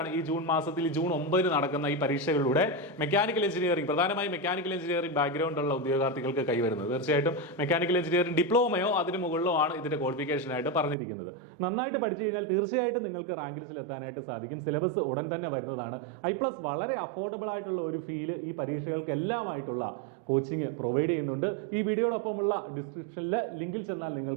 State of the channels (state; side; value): drops out; left; at 11.0 s